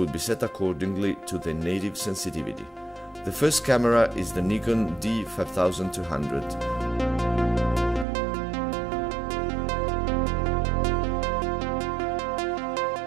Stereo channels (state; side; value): drops out; left; at 8.1 s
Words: be set accordingly to their native sensitivity. The first camera is the Nikon D5200.